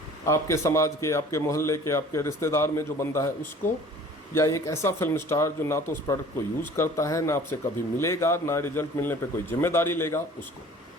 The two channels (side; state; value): both; normal; correlation 0.48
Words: आपके समाज के, आपके मोहल्ले के, आपके रिश्तेदार में जो बंदा है उसको, या एक ऐसा फिल्म स्टार जो ना तो उस प्रोडक्ट को यूज़ करता है, ना आपसे कभी मिलेगा, ना रिजल्ट मिलने पे कोई जिम्मेदारी लेगा, उसको?